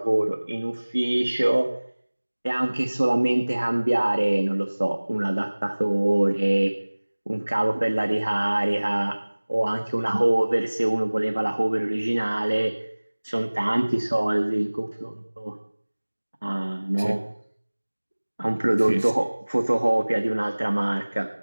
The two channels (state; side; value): inverted; both; correlation -1.00